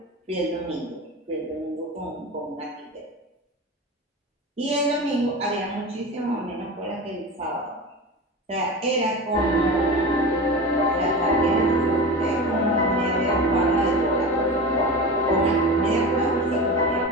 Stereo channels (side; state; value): both; normal; correlation 0.28